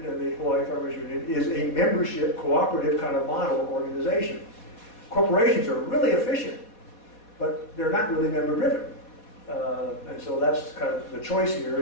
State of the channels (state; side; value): late; right; 4.2 ms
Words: and the Hawaii Farmers Union is a membership, cooperative kind of model organization. Corporations are really efficient, but they're not really member-driven. And so that's kind of the choice here